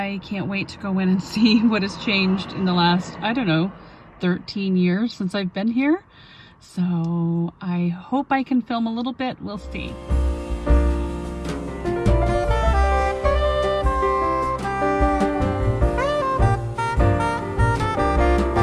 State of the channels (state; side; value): identical; both; correlation 1.00